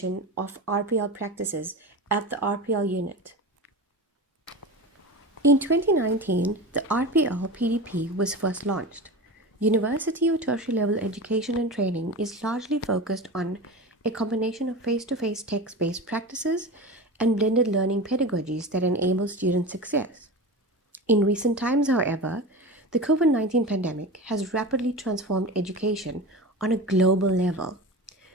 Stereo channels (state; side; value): normal; both; correlation 0.28